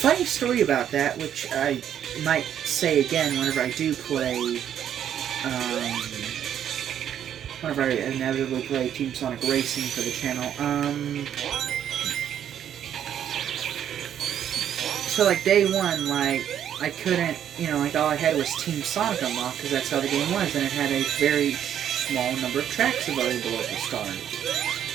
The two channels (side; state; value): left; quieter; 9.8 dB